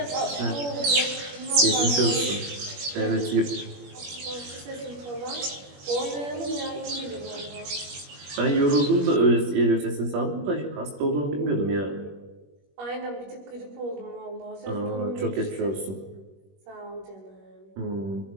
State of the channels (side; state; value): left; late; 21 ms